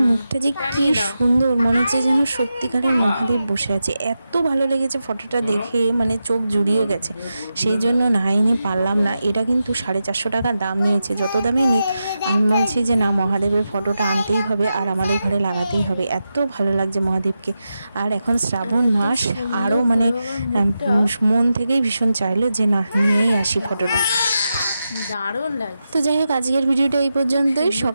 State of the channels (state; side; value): inverted; both; correlation -0.89